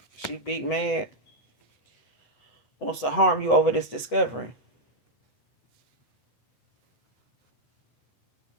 She big mad. Wants to harm you over this discovery.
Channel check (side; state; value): right; late; 8.0 ms